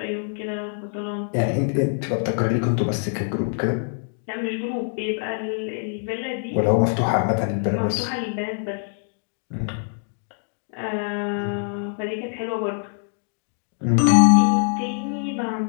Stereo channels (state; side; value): silent; right; digital silence